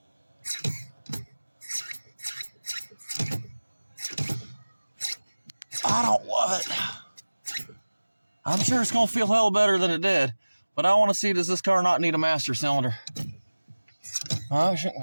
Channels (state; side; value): inverted; both; correlation -1.00